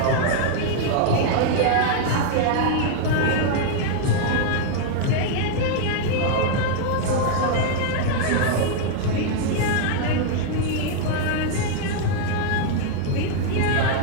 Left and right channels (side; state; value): both; different; correlation 0.00